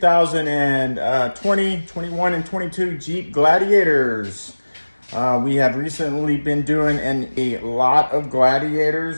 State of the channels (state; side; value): inverted; both; correlation -1.00